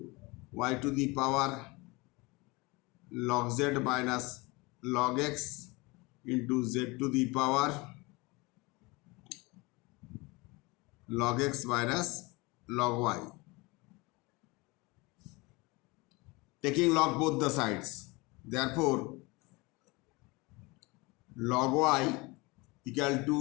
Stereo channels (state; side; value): quieter; right; 25.0 dB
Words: y to the power log z minus log x into z to the power log x minus log y. Taking log both the sides. Therefore, log y equal